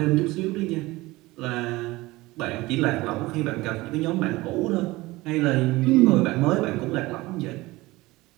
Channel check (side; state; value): left; quieter; 20.2 dB